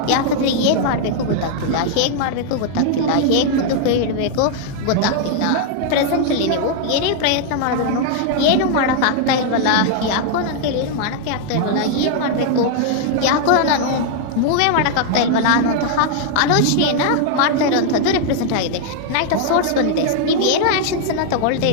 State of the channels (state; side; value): different; both; correlation 0.00